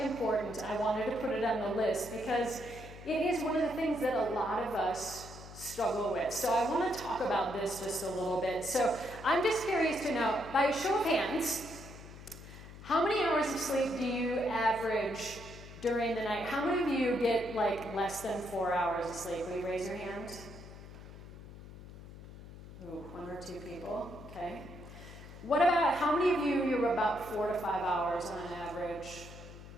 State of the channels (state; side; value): noise; left; hum, 15 dB below the sound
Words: I wanted to put it on the list because it is one of the things that a lot of us struggle with. So I want to talk about this just a little bit. So I'm just curious to know, by a show of hands, how many hours of sleep do you average during the night? How many of you get like less than 4 hours of sleep? Will you raise your hand? Ooh, 1 or 2 people, okay. What about, how many of you, you're about 4 to 5 hours on average?